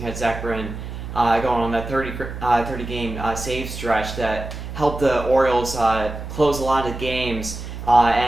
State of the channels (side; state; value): right; noise; hum, 9 dB below the sound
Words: had Zach Britton going on that 30-game save stretch that helped the Orioles close a lot of games